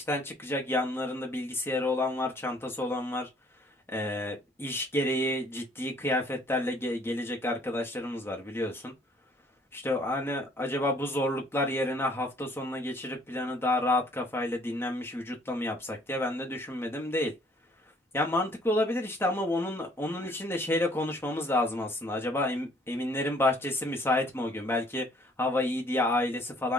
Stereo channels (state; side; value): normal; both; correlation 0.60